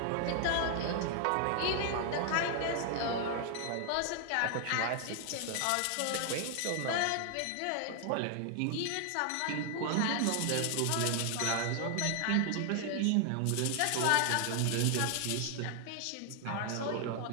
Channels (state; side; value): different; both; correlation 0.00